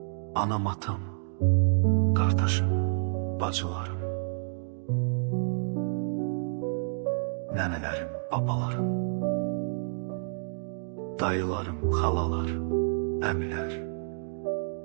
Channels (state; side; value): silent; left; digital silence